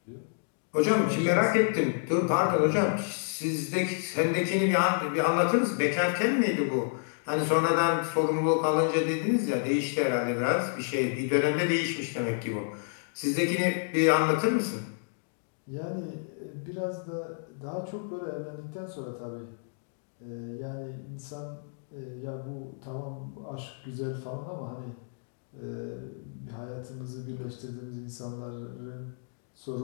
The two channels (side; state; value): right; silent; digital silence